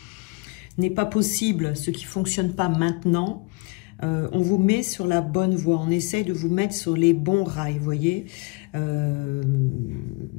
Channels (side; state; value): right; quieter; 29.6 dB